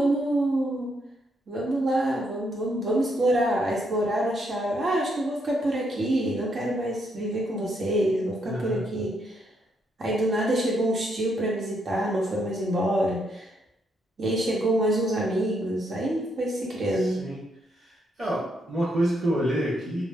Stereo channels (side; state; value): both; normal; correlation 0.76